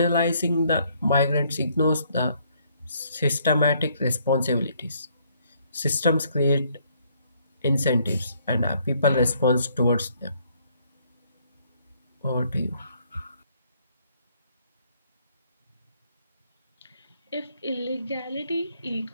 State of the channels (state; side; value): inverted; both; correlation -0.67